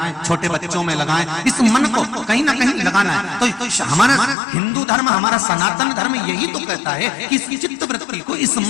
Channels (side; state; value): right; drops out; at 4.4 s